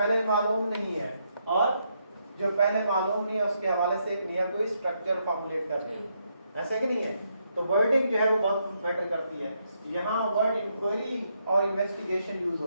मालूम नहीं है और जो पहले मालूम नहीं है उसके हवाले से एक नया कोई स्ट्रक्चर फॉर्मुलेट करते हैं, ऐसा कि नहीं है? तो वर्डिंग जो है वो बहुत मैटर करती है। यहाँ वर्ड इंक्वायरी और इन्वेस्टिगेशन यूज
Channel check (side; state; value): both; inverted; correlation -0.78